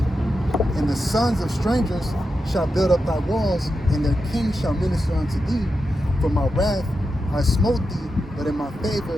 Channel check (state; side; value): normal; both; correlation 0.88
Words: And the sons of strangers shall build up thy walls, and their kings shall minister unto thee. For my wrath I smote thee, but in my